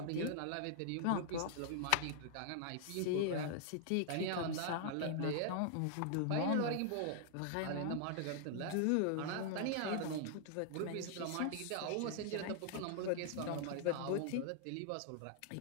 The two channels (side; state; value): both; different; correlation -0.01